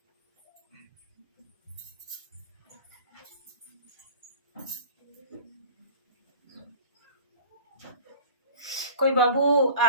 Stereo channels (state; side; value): inverted; both; correlation -0.43